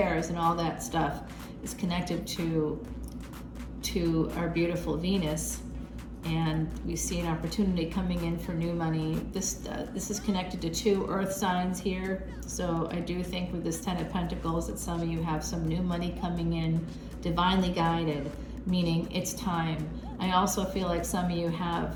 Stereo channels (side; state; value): both; identical; correlation 1.00